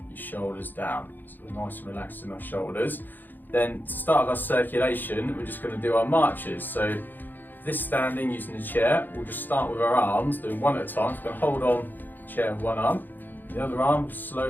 your shoulders down. So we're nice and relaxed in our shoulders. Then to start our circulation, we're just going to do our marches. So this standing using the chair, we'll just start with our arms, doing one at a time. So we're going to hold on the chair with one arm. The other arm,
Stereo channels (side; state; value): right; late; 0.089 ms